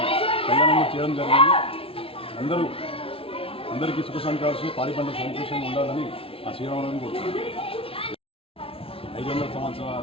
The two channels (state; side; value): late; right; 0.26 ms